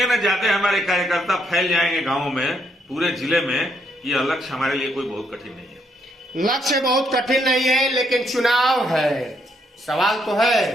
न ज्यादा हमारे कार्यकर्ता फैल जाएंगे गांवों में, पूरे जिले में। यह लक्ष्य हमारे लिए कोई बहुत कठिन नहीं है। लक्ष्य बहुत कठिन नहीं है, लेकिन चुनाव है। सवाल तो है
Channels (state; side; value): normal; both; correlation 0.74